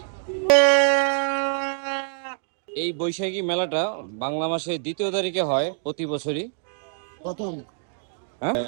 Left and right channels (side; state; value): left; silent; 62 dB below the other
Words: এই বৈশাখী মেলাটা বাংলা মাসের 2য় তারিখে হয় প্রতি বছরই। প্রথম। হ্যাঁ,